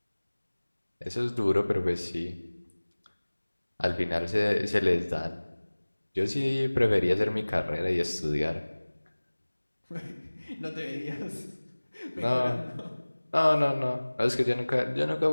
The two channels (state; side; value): inverted; both; correlation -1.00